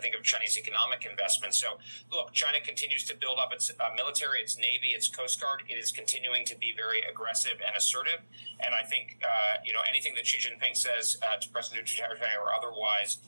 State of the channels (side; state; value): both; inverted; correlation -1.00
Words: of Chinese economic investment. So, look, China continues to build up its military, its Navy, its Coast Guard. It is continuing to be very aggressive and assertive. And I think, anything that Xi Jinping says to President Duterte or otherwise